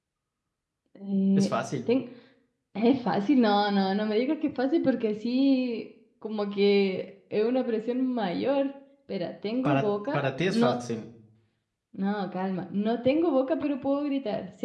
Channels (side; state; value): both; identical; correlation 1.00